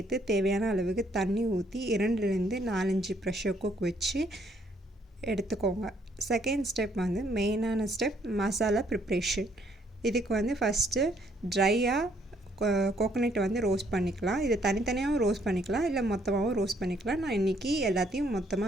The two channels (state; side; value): normal; both; correlation 0.68